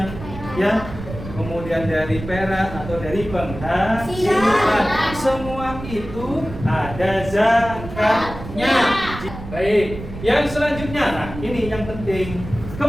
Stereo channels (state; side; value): noise; right; rumble, 11 dB below the sound